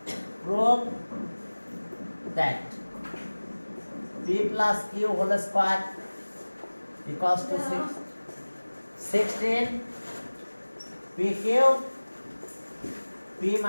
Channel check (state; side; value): inverted; both; correlation -1.00